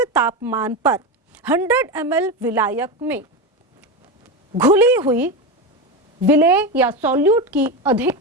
तापमान पर 100 ml विलायक में घुली हुई विलेय या सॉल्यूट की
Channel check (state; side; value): normal; both; correlation 0.17